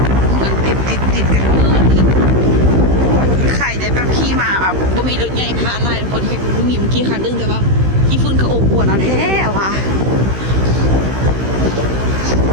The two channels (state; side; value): late; left; 16 ms